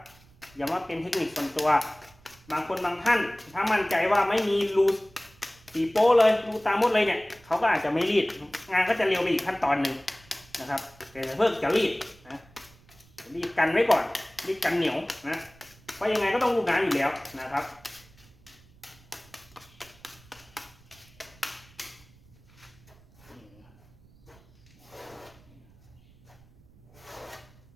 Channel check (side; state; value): right; noise; rumble, 26 dB below the sound